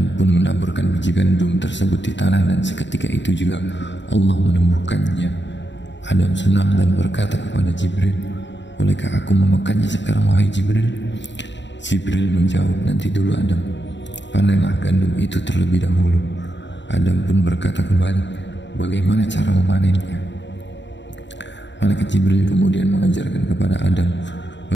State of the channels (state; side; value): late; right; 0.52 ms